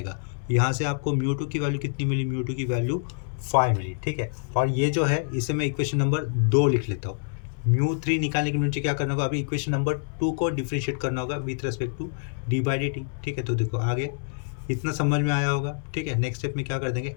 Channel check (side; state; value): right; silent; 61 dB below the other